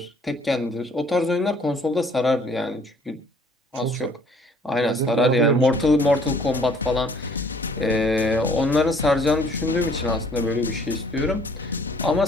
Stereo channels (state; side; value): normal; both; correlation 0.58